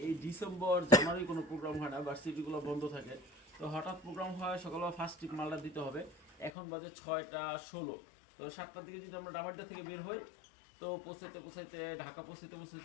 এই ডিসেম্বর জানুয়ারি কোনো প্রোগ্রাম হয় না, ভার্সিটিগুলো বন্ধ থাকে। তো হঠাৎ প্রোগ্রাম হয়, সকালবেলা ফার্স্ট ট্রিপ মালটা দিতে হবে। এখন বাজে 6টা 16। তো 7টার দিকে যদি আমরা ডামারডা থেকে বের হই, তো পৌঁছাতে পৌঁছাইতে ঢাকা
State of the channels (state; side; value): drops out; right; at 6.5 s